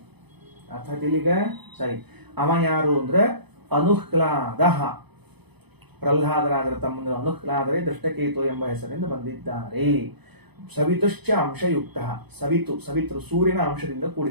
ಅರ್ಥಾತ್ ಇಲ್ಲಿಗ ಸರಿ. ಅವ ಯಾರು ಅಂದ್ರೆ ಅನುಹ್ಲಾದ. ಪ್ರಹ್ಲಾದರಾಜರ ತಮ್ಮಂದಿರು ಅನುಹ್ಲಾದರೆ ದೃಷ್ಟಕೇತು ಎಂಬ ಹೆಸರಿಂದ ಬಂದಿದ್ದಾರೆ. ಸವಿತುಶ್ಚ ಅಂಶಯುಕ್ತ. ಸವಿತೃ ಸೂರ್ಯನ ಅಂಶದಿಂದ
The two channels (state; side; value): late; left; 0.99 ms